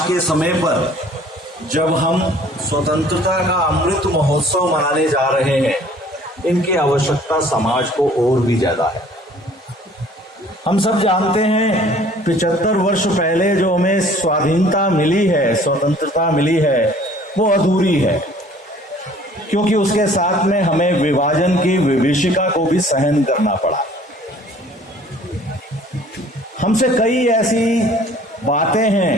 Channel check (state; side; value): normal; both; correlation 0.53